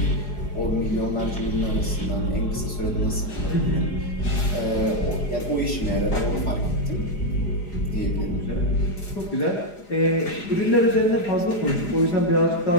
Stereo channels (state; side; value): late; right; 4.9 ms